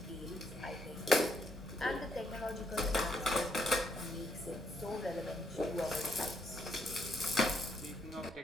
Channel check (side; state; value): both; normal; correlation 0.74